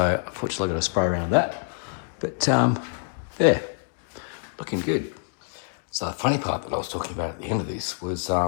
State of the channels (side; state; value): right; silent; digital silence